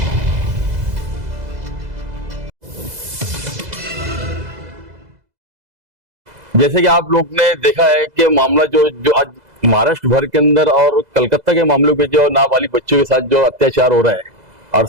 जैसे कि आप लोग ने देखा है कि मामला जो आज महाराष्ट्र भर के अंदर और कलकत्ता के मामलों पे जो नाबालिग बच्चों के साथ जो अत्याचार हो रहा है, और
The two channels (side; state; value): left; late; 2.0 ms